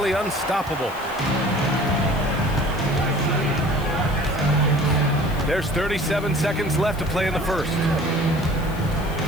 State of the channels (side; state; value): left; noise; hiss, 20 dB below the sound